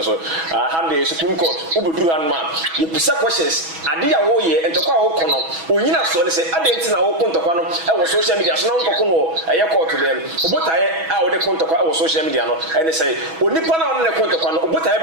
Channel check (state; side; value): late; left; 6.2 ms